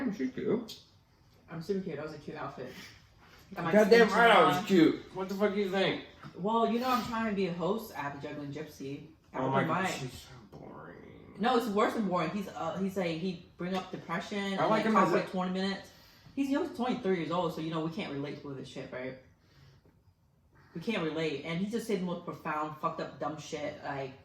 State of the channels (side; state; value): both; identical; correlation 1.00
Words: she's cute. I'm super cute. That was a cute outfit. Goddamn right, I was cute. What the fuck do you think? Well, you know I'm trying to be a host at the Juggling Gypsy. Oh my god, she's so boring. No, it's worse than boring. He's he bring up depression. I like him talk as for like 20 minutes. He's 23 years old, so you know we can't relate to this shit, right? We can't relate, and he just said the most profound, fucked up, dumb shit like